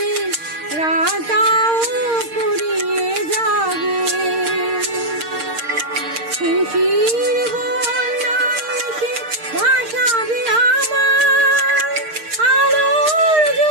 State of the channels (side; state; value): left; late; 6.5 ms